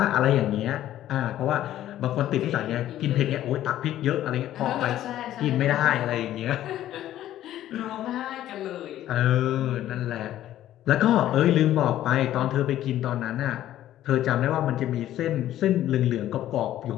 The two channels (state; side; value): quieter; right; 12.8 dB